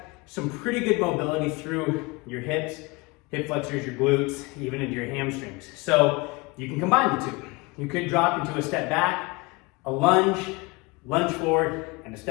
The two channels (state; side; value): quieter; right; 25.6 dB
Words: some pretty good mobility through your hips, hip flexors, your glutes, even into your hamstrings. So you can combine the two. You could drop into a step back, a lunge, lunge forward, and a